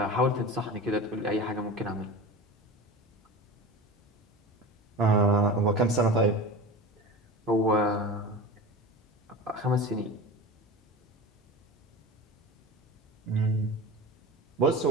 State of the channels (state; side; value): normal; both; correlation 0.31